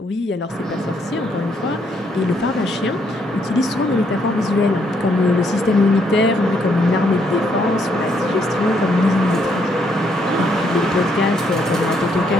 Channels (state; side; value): normal; both; correlation 0.72